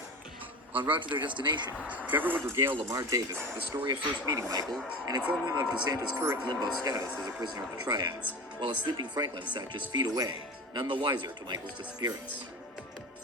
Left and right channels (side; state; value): both; normal; correlation 0.30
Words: En route to their destination, Trevor would regale Lamar Davis with the story of first meeting Michael and inform him of DeSantis' current limbo status as a prisoner of the Triads, while a sleeping Franklin sat just feet away, none the wiser to Michael's disappearance.